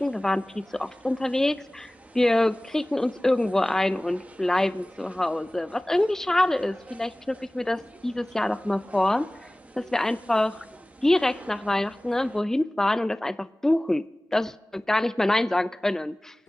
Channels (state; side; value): normal; both; correlation 0.98